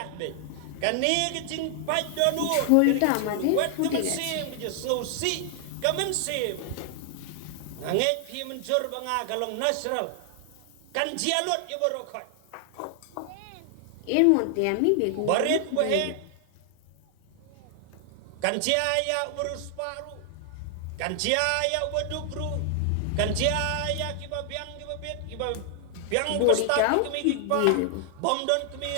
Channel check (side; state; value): both; different; correlation 0.00